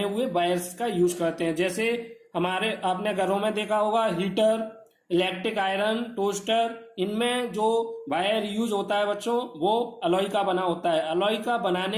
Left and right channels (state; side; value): identical; both; correlation 1.00